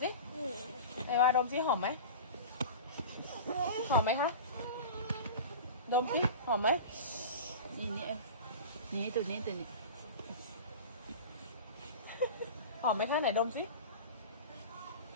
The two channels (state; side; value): inverted; both; correlation -0.33